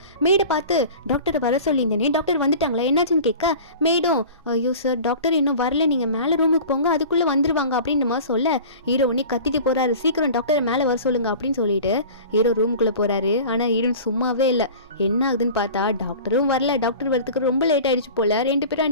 மேடை பார்த்து டாக்டரை வர சொல்லியிருந்தேனே, டாக்டர் வந்துட்டாங்களா என்னாச்சுன்னு கேட்க மேடம் ஐயோ சார் டாக்டர் இன்னும் வரல, நீங்க மேல ரூமுக்கு போங்க அதுக்குள்ள வந்துருவாங்க அப்படின்ற மாதிரி சொல்ல ஹீரோ உடனே கத்திட்டு போறாரு. சீக்கிரம் டாக்டரை மேல வர சொல்லுங்க அப்படின்னு சொல்லிட்டு ஹீரோ ரூமுக்குள்ள போறாரு. ஆனா ஹீரோயின் சும்மாவே இல்லை. என்ன ஆகுதுன்னு பார்த்தா டாக்டரும் வரல. டாக்டர் வரதுக்கு ரொம்ப லேட் ஆயிடுச்சு போல. 2 பேரும்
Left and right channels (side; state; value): both; inverted; correlation -0.39